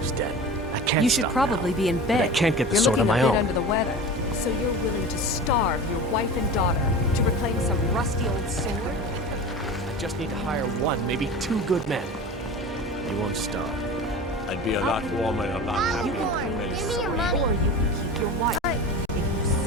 den. I can't You should stop probably now. be in bed. But I can't get the You're sword on looking my a bit own. under the weather. So you're willing to starve your wife and daughter to reclaim some rusty old sword? I just need to hire one, maybe two good men. You won't starve. I'd be a lot warmer and a lot happier You can with claim the this Give me your sword, money. or you can keep your wife. If you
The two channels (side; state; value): both; normal; correlation 0.33